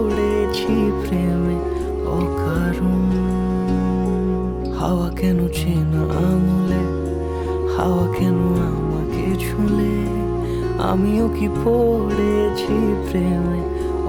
প্রেমে অকারণ। হাওয়া কেন চেনা আঙুলে, হাওয়া কেন আমাকে ছুলে, আমিও কি পড়েছি প্রেমে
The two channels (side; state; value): both; identical; correlation 1.00